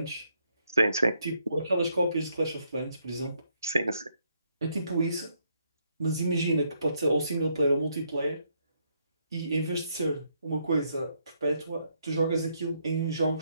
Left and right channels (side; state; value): both; inverted; correlation -0.74